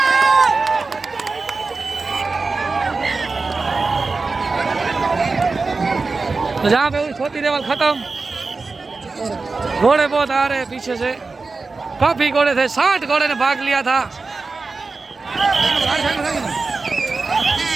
तो जहाँ पे हुई छोटी लेवल खत्म। घोड़े बहुत आ रहे हैं पीछे से, काफी घोड़े थे, 60 घोड़े ने भाग लिया था।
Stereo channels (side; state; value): left; quieter; 4.0 dB